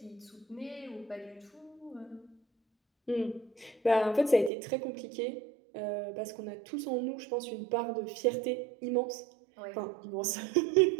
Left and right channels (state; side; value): drops out; left; at 4.5 s